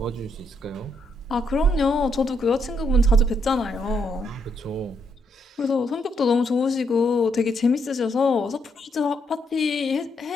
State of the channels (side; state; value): both; normal; correlation 0.76